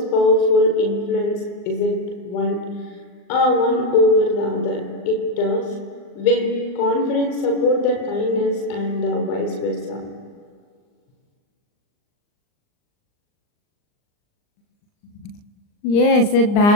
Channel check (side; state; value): right; late; 39 ms